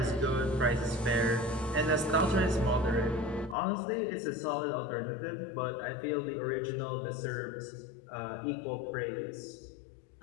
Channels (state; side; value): drops out; right; at 3.6 s